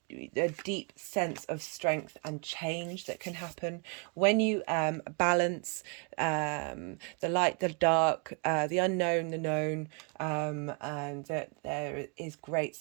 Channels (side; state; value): left; quieter; 36.9 dB